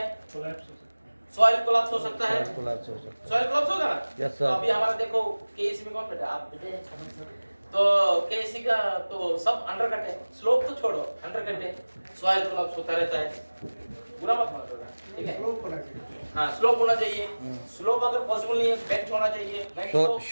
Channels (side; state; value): both; inverted; correlation -1.00